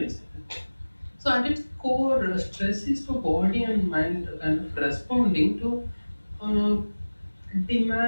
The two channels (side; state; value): both; inverted; correlation -1.00